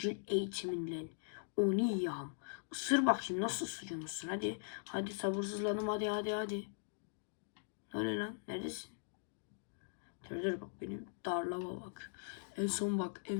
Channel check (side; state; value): right; silent; digital silence